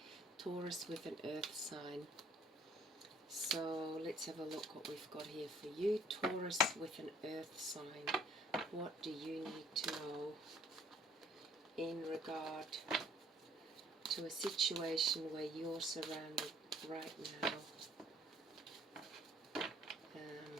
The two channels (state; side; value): normal; both; correlation 0.58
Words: Taurus with an earth sign. So let's have a look what we've got here for you. Taurus with an earth sign. What do you need to know in regard to a situation where you're surrounded right now?